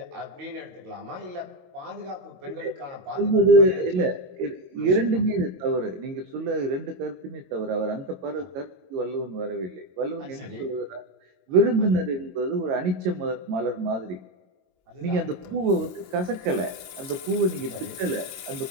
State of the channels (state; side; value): late; left; 21 ms